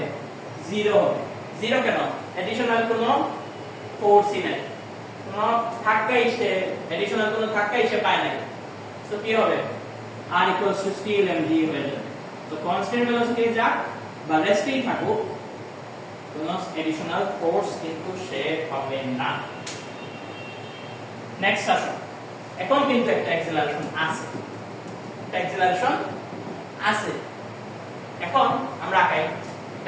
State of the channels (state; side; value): identical; both; correlation 1.00